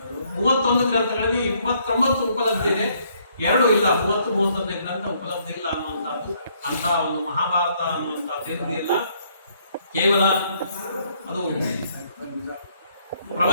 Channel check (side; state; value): both; inverted; correlation -0.68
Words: 31 ಗ್ರಂಥಗಳಲ್ಲಿ 29 ಉಪಲಬ್ಧ ಇದೆ. 2 ಇಲ್ಲ, 30-31ನೇ ಗ್ರಂಥ ಉಪಲಬ್ಧ ಇಲ್ಲ ಅನ್ನುವಂಥದ್ದು. ಅಂತ ಒಂದು ಮಹಾಭಾರತ ಅನ್ನುವಂಥದ್ದು ಇಲ್ಲ. ಕೇವಲ ಅದು